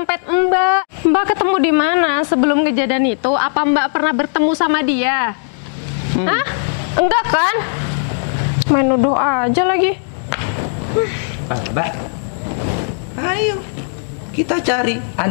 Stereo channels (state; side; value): silent; right; digital silence